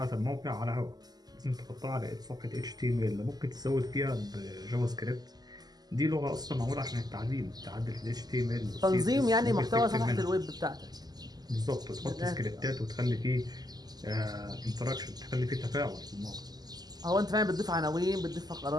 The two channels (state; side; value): late; left; 0.20 ms